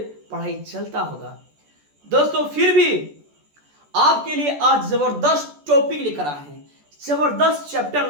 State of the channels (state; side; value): late; left; 14 ms